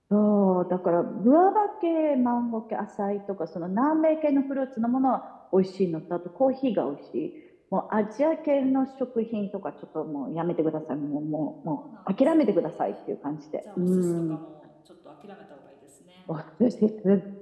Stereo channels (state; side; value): identical; both; correlation 1.00